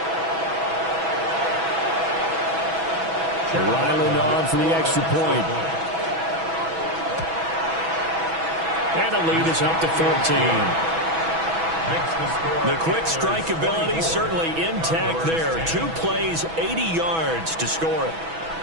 Ryland on for the extra point. And the lead is up to 14. The quick strike ability certainly intact there. 2 plays, 80 yards to score it.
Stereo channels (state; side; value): late; left; 6.1 ms